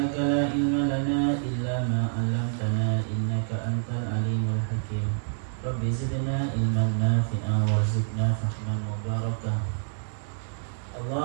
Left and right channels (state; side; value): silent; left; digital silence